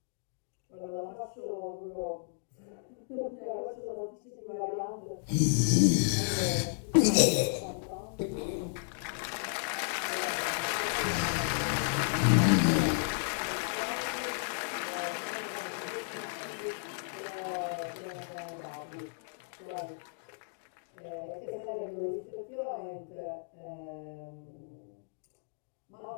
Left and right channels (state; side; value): silent; right; digital silence